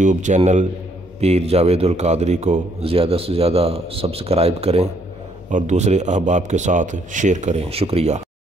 چینل پیر جاوید القادری کو زیادہ سے زیادہ سبسکرائب کریں اور دوسرے احباب کے ساتھ شیئر کریں۔ شکریہ۔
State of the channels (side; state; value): both; normal; correlation 0.68